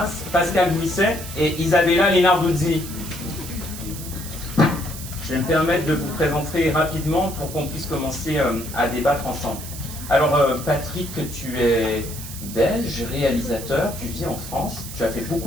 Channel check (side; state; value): right; noise; hiss, 11 dB below the sound